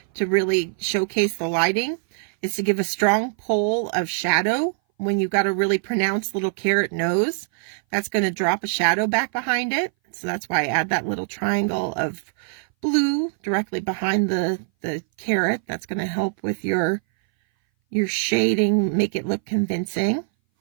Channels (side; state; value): left; silent; 59 dB below the other